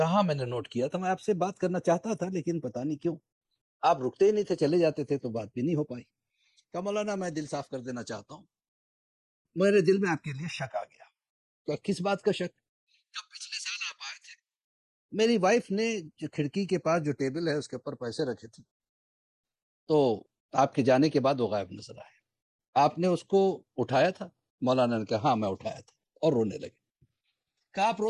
میں نے نوٹ کیا تھا، میں آپ سے بات کرنا چاہتا تھا لیکن پتہ نہیں کیوں آپ رکتے ہی نہیں تھے، چلے جاتے تھے تو بات بھی نہیں ہو پائی۔ کہا مولانا میں دل صاف کر دینا چاہتا ہوں، میرے دل میں آپ کے لیے شک آ گیا۔ کہ کس بات کا شک؟ جب پچھلے سال آپ آئے تھے، میری وائف نے جو کھڑکی کے پاس جو ٹیبل ہے اس کے اوپر پیسے رکھے تھے، تو آپ کے جانے کے بعد وہ غائب نظر آئے۔ آپ نے اس کو اٹھایا تھا؟ مولانا نے کہا ہاں میں اٹھایا تھا، اور رونے لگے۔ کہا آپ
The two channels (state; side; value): identical; both; correlation 1.00